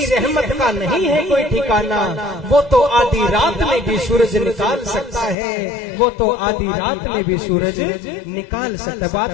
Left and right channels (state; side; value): drops out; right; at 5.4 s